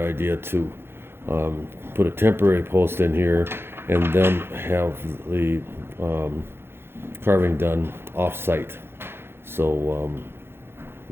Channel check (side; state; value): left; late; 0.11 ms